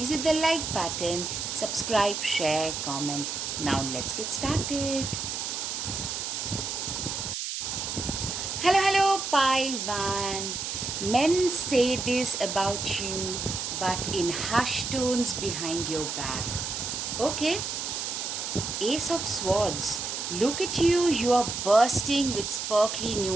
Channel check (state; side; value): noise; right; hiss, 3 dB below the sound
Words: hit the like button, subscribe, share, comment. Now, let's get started. Hello, pile one. Men say this about you, but in hushed tones behind your back. Okay, Ace of Swords. Look at you, you are bursting with sparkly